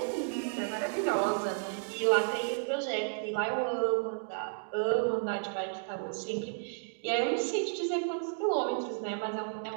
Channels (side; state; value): left; silent; digital silence